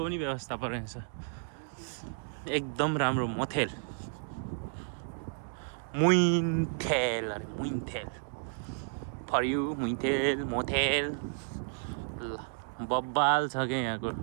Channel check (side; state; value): left; silent; digital silence